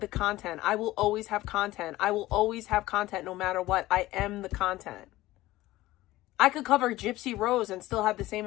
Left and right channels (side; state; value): right; quieter; 17.2 dB